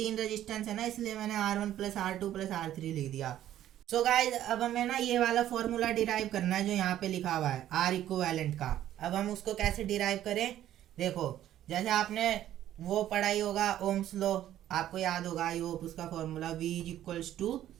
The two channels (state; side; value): quieter; left; 12.2 dB